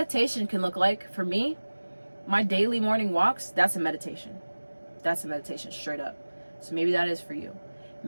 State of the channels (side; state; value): both; inverted; correlation -1.00